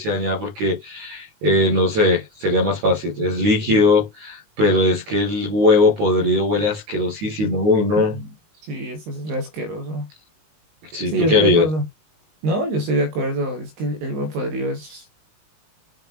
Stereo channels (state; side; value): late; left; 19 ms